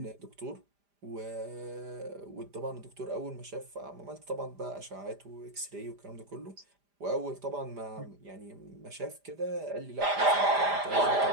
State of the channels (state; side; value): late; left; 5.0 ms